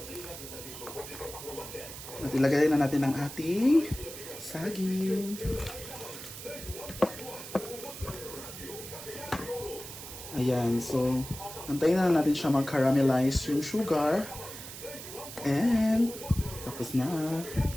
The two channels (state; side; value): noise; right; hiss, 11 dB below the sound